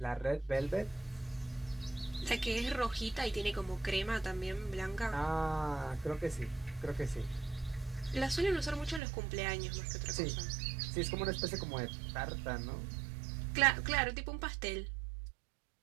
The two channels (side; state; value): left; drops out; at 9.0 s